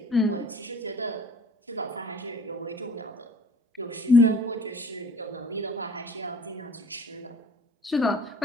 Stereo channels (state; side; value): normal; both; correlation 0.50